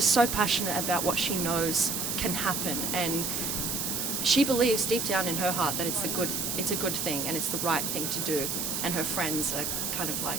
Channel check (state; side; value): noise; right; hiss, 1 dB below the sound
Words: so passionate about what she knows can happen, and she believes deep down in her heart that it's a good thing and it's the right thing to do. And her friends are kind of like,